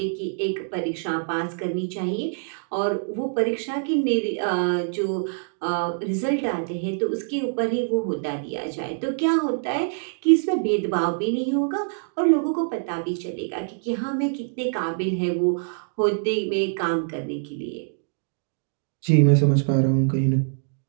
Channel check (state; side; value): silent; left; digital silence